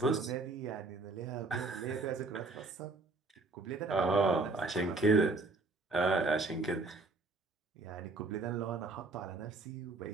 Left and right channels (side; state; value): left; quieter; 3.5 dB